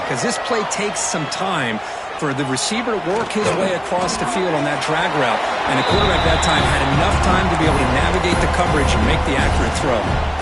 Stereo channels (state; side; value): identical; both; correlation 1.00